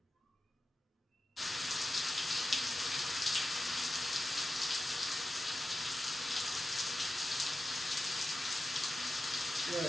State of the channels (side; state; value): both; normal; correlation 0.92